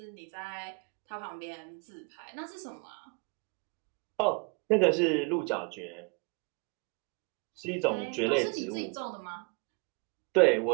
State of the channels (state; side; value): quieter; left; 32.6 dB